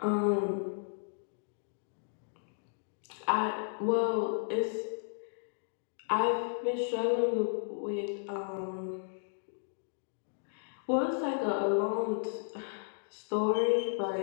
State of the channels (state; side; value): silent; right; digital silence